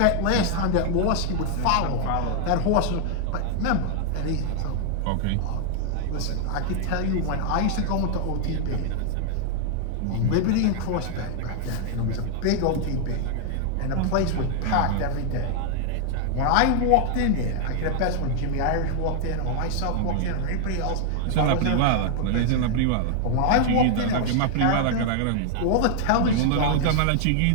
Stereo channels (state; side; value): different; both; correlation 0.00